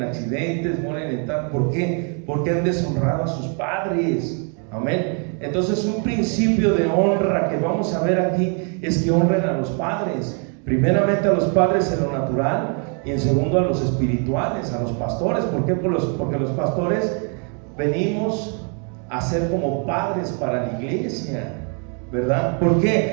accidentes, mueren en tal. ¿Por qué? Porque han deshonrado a sus padres. Amén. Entonces, un principio de honra que vamos a ver aquí es que honren a los padres. Primeramente a los padres en lo natural, y en segundo a los espirituales, a los pastores. ¿Por qué? Porque los pastores venimos a ser como padres para la iglesia, ¿verdad? ¿Por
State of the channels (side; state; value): left; quieter; 39.9 dB